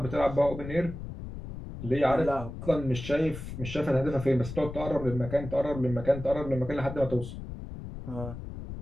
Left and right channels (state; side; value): noise; left; rumble, 10 dB below the sound